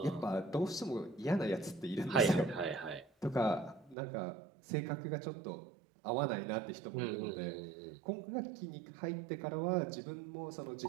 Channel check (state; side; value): drops out; left; at 4.0 s